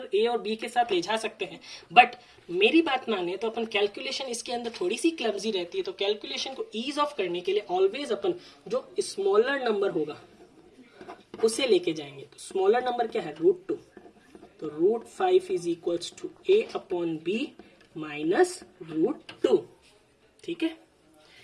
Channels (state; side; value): identical; both; correlation 1.00